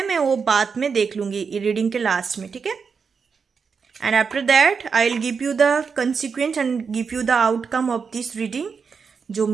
मैं वो बाद में देख लूँगी रीडिंग के लास्ट में, ठीक है। And after that I will give you the consequence and give you the outcome of this reading. जो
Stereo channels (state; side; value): quieter; left; 5.7 dB